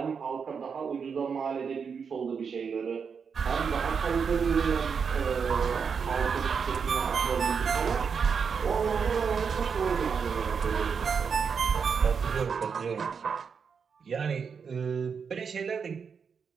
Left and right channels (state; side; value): quieter; left; 6.2 dB